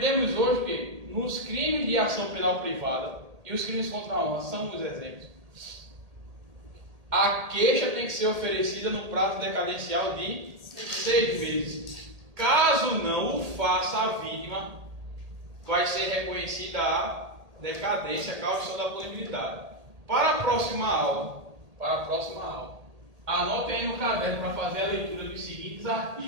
hoje que nos crimes de ação penal privada e os crimes contra a honra são os exemplos. A queixa tem que ser oferecida no prazo decadencial de 6 meses. Caso não o faça, a vítima vai ser reconhecida a decadência, causa da punibilidade. Para a próxima aula, anote aí no caderno para fazer a leitura dos seguintes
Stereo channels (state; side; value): late; left; 1.8 ms